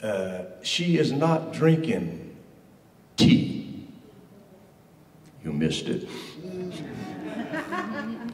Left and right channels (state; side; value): identical; both; correlation 1.00